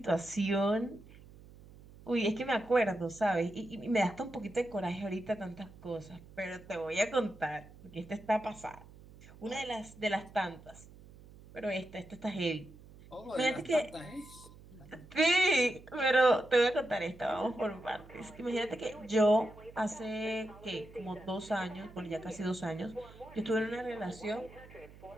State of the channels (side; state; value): right; noise; hum, 20 dB below the sound